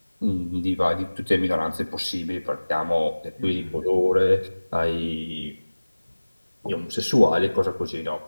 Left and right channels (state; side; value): inverted; both; correlation -1.00